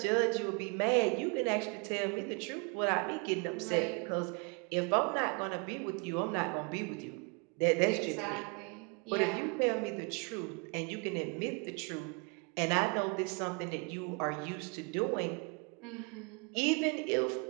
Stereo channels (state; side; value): quieter; left; 33.3 dB